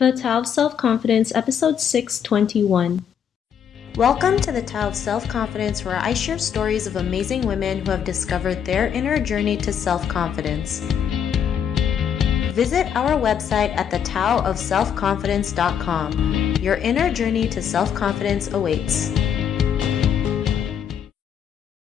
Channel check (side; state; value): right; quieter; 8.3 dB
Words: Tao of Self-Confidence, Episode 621. Welcome to the Tao of Self-Confidence, where I share stories of amazing women who have discovered their inner journey to self-confidence. Visit our website at thetaoofselfconfidence.com. Your inner journey to self-confidence awaits.